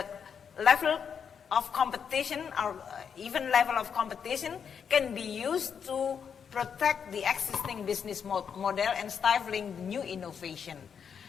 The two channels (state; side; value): quieter; right; 7.1 dB